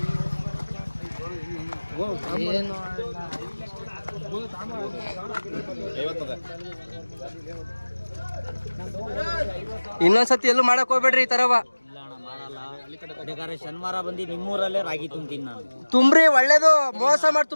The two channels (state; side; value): inverted; both; correlation -1.00